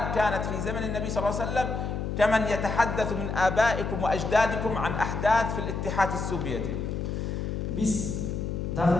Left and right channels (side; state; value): left; noise; hum, 3 dB below the sound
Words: كانت في زمن النبي صلى الله عليه وسلم كمن يتحدث من آبائكم وأجدادكم عن أحداث في الاتحاد السوفيتي.